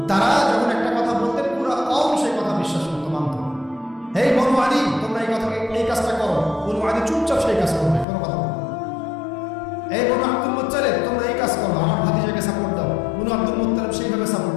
তারা যখন একটা কথা বলতেন পুরো কওম সেই কথা বিশ্বাস করতো, মানত। এই বনু আদি, তোমরা এই কাজটা করো, বনু আদি চুপচাপ সেই কাজ করবে, কোনো কথা বলবে। এই বনু আব্দুল মুত্তালিব, তোমরা এই কাজ করো, আমার ভাতিজাকে সাপোর্ট দাও, বনু আব্দুল মুত্তালিব সেইভাবে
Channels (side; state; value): right; drops out; at 8.1 s